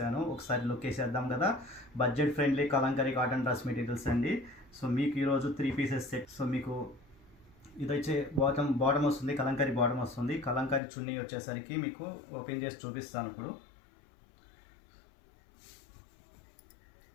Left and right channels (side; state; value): right; drops out; at 10.8 s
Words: ఒకసారి లుక్ వేసేద్దాం కదా. Budget friendly Kalamkari cotton dress materials అండి. మీకు ఈరోజు 3 పీసెస్ సెట్. మీకు ఇది వచ్చే బాటమ్ వస్తుంది, కలంకరీ బాటమ్ వస్తుంది. కలంకరీ చున్నీ వచ్చేసరికి మీకు ఓపెన్ చేసి చూపిస్తాను ఇప్పుడు.